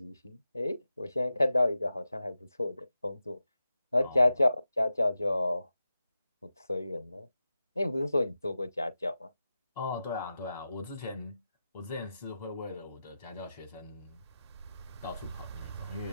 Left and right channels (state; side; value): inverted; both; correlation -0.92